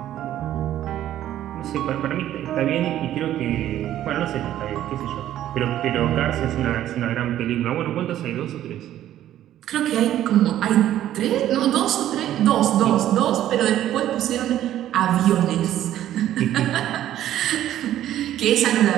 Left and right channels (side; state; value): left; quieter; 12.3 dB